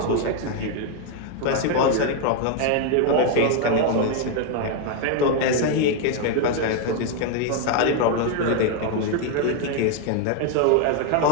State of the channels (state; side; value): different; both; correlation 0.01